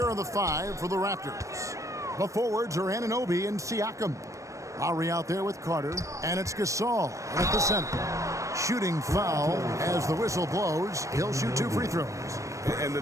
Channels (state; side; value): late; left; 0.15 ms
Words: are the five for the Raptors. The forwards are Anunoby and Siakam. Lowry out there with Carter, and it's Gasol at the center. Shooting foul as the whistle blows. He'll shoot 2 free throws. And the